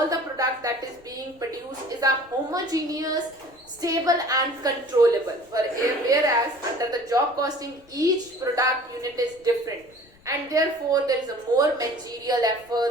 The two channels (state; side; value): noise; left; rumble, 28 dB below the sound